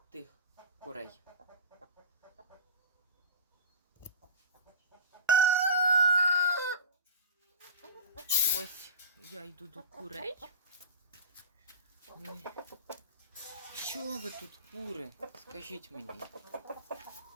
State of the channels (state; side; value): inverted; both; correlation -0.31